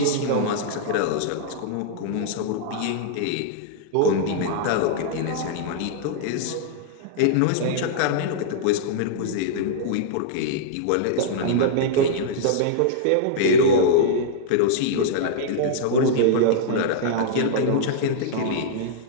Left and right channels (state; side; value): different; both; correlation -0.01